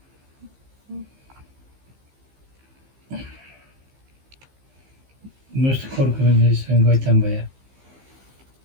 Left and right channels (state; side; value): late; left; 15 ms